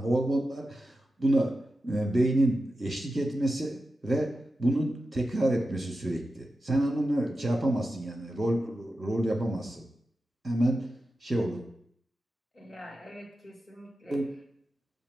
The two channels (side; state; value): both; normal; correlation 0.91